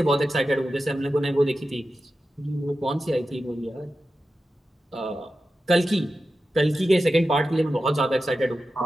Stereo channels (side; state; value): both; normal; correlation 0.92